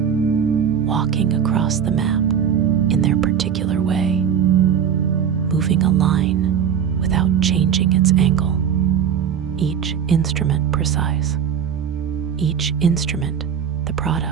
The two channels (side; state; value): left; quieter; 8.1 dB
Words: walking across the map in their particular way, moving a line without changing its angle. Each instrument precise. Each instrument the